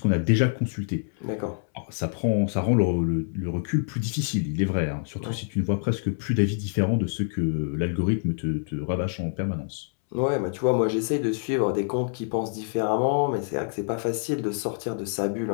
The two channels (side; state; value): right; silent; 61 dB below the other